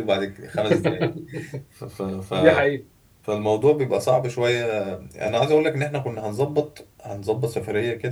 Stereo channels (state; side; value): identical; both; correlation 1.00